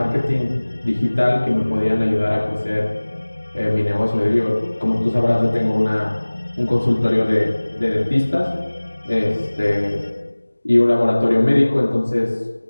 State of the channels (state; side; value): inverted; both; correlation -1.00